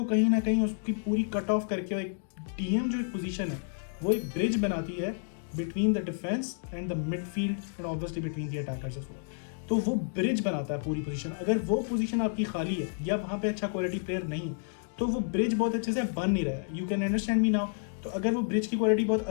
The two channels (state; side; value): silent; right; digital silence